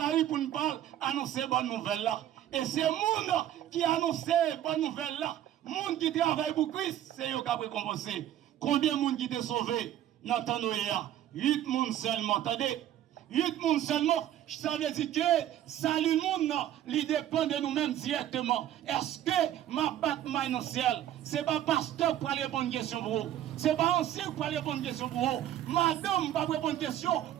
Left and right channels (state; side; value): quieter; left; 11.9 dB